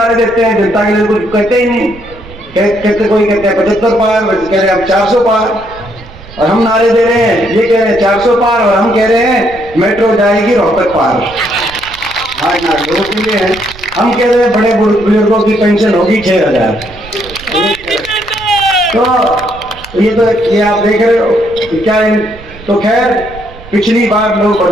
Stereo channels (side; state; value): right; noise; rumble, 19 dB below the sound